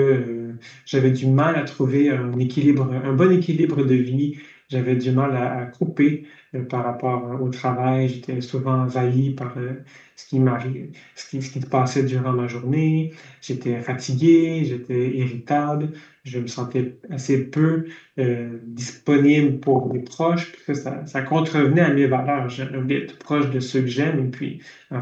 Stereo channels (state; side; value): identical; both; correlation 1.00